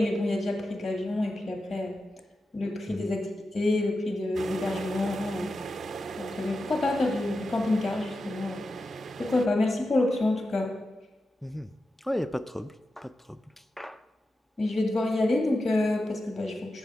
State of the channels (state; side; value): normal; both; correlation 0.90